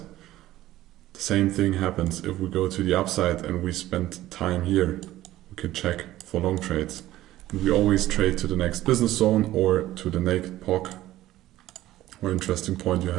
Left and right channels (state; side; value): quieter; left; 15.1 dB